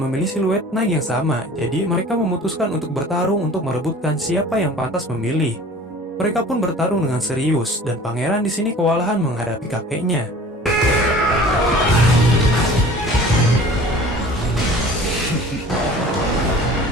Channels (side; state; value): both; normal; correlation 0.45